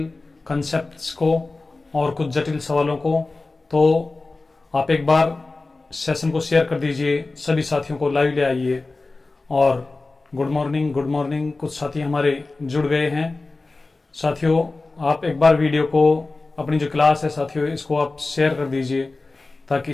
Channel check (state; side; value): quieter; right; 3.4 dB